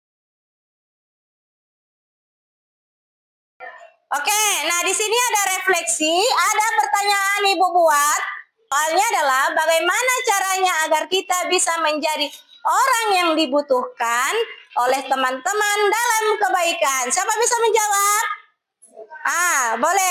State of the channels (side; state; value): both; identical; correlation 1.00